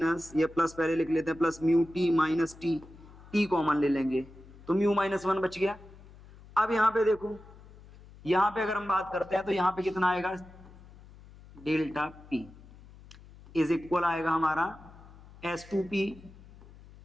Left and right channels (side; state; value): left; noise; hum, 21 dB below the sound